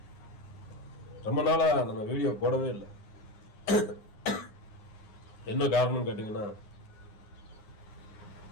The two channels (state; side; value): late; right; 9.6 ms